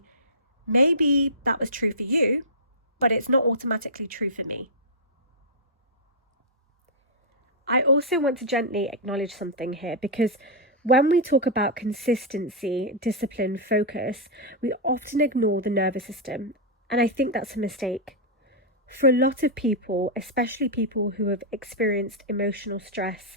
maybe that was true for you, but it's not automatically true for me. I also want to gently acknowledge something here, because when we talk about consistency, discipline, focus, we often ignore the nervous system. And I think that's a mistake. For a lot of people, especially people who have experienced emotional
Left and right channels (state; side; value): normal; both; correlation -0.09